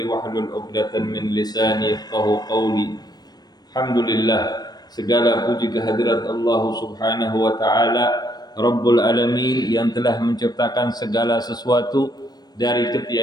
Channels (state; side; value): late; right; 0.19 ms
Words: واحلل عقدة من لساني يفقهوا قولي. Alhamdulillah, segala puji kehadirat Allah Subhanahu wa taala Rabbul Alamin yang telah menciptakan segala sesuatu dari